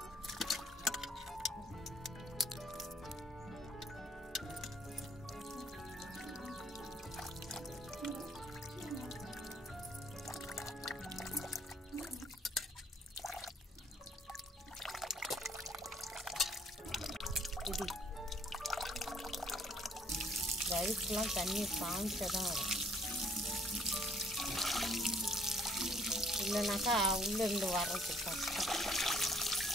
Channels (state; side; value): normal; both; correlation 0.61